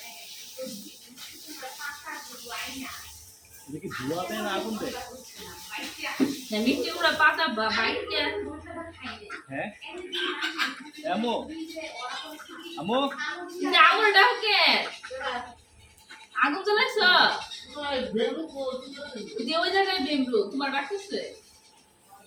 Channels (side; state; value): both; identical; correlation 1.00